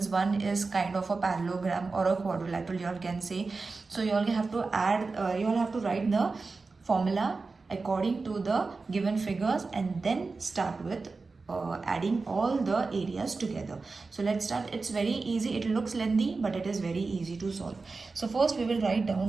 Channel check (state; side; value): quieter; left; 4.0 dB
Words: One is kind of a parallelogram or a quadrilateral, you all can say. So you all have to add, you all have to write the formula according to the given figures and then start with adding all the areas together. So let's start. It's very easy. It looks lengthy, but it is very easy to solve. So first we will write